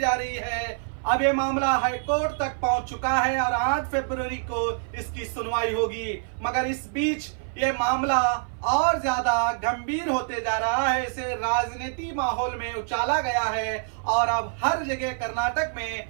रही है। अब ये मामला हाईकोर्ट तक पहुंच चुका है और 8 फरवरी को इसकी सुनवाई होगी, मगर इस बीच ये मामला और ज्यादा गंभीर होते जा रहा है। इसे राजनीति माहौल में उछाला गया है और अब हर जगह कर्नाटक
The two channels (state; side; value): silent; left; 56 dB below the other